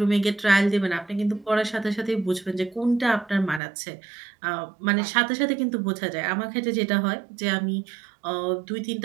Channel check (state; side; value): drops out; left; at 3.6 s